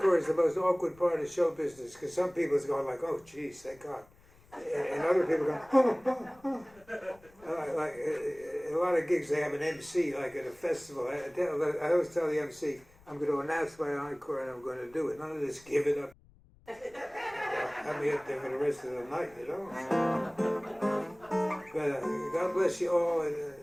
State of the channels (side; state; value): left; noise; rumble, 27 dB below the sound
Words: is the most awkward part of show business because some people's going like, "Oh, geez, thank God." and other people go, like a lot of gigs they have an MC, like at a festival. I always tell the MC, I'm going to announce my encore and I'm going to do it. None of this give it up. Have me up there for the rest of the night, you know. But God bless you all, and